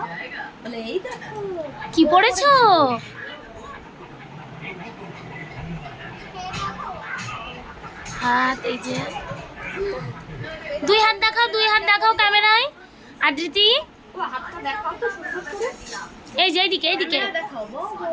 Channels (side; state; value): both; identical; correlation 1.00